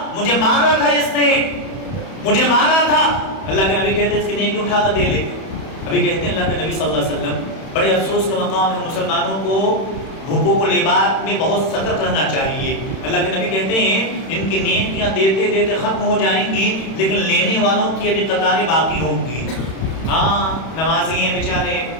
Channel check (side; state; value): right; late; 31 ms